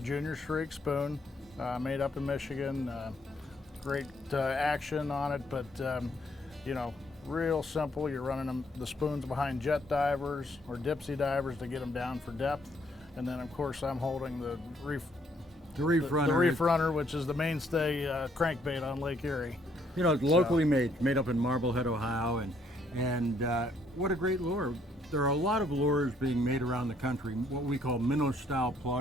Streak spoon, made up in Michigan. Great action on it, but you know, real simple. You're running the spoons behind jet divers or dipsy divers to get them down for depth. And then of course I'm holding the reef runner, which is the mainstay crankbait on Lake Erie. You know, it's locally made up in Marblehead, Ohio, and what a great lure. There are a lot of lures being made around the country, what we call minnow-style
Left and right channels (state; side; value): normal; both; correlation 0.69